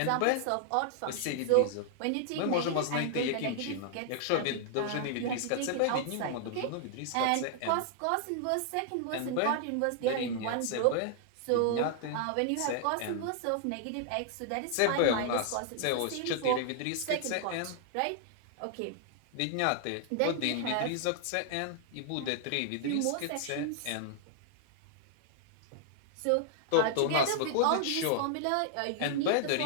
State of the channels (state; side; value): different; both; correlation 0.00